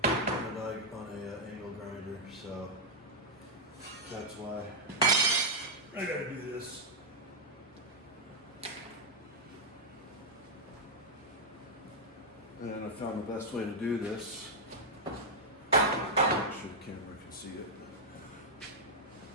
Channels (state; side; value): normal; both; correlation -0.04